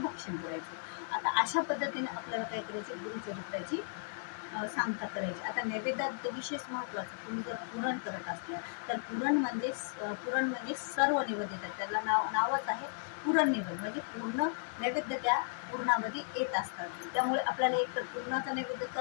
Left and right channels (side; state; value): right; silent; 54 dB below the other